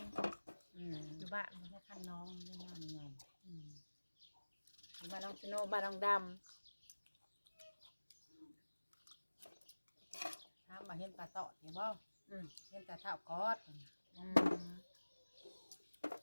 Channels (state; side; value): inverted; both; correlation -1.00